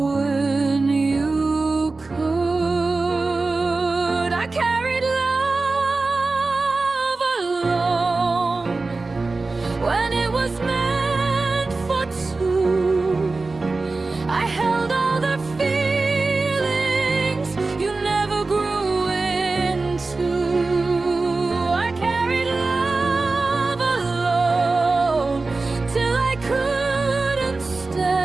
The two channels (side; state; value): left; quieter; 3.6 dB